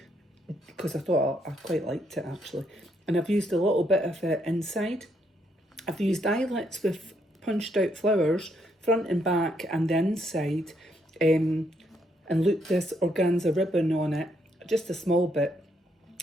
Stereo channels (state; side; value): normal; both; correlation 0.74